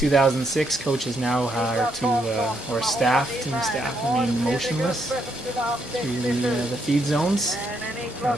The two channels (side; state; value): both; normal; correlation 0.76